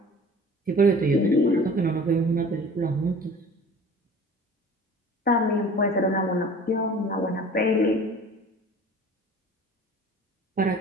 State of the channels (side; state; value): both; normal; correlation 0.44